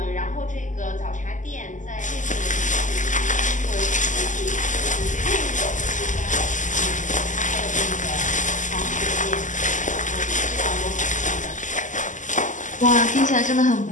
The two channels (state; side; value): late; right; 0.37 ms